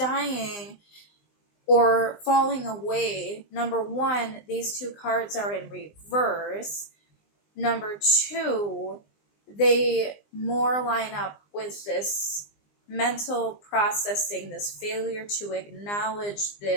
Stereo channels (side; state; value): right; late; 20 ms